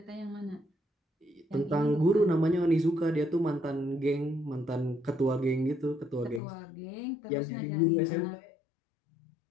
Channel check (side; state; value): right; drops out; at 6.4 s